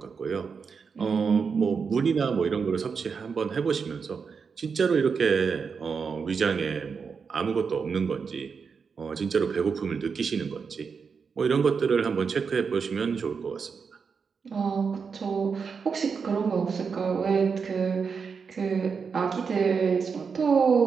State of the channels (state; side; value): quieter; left; 5.7 dB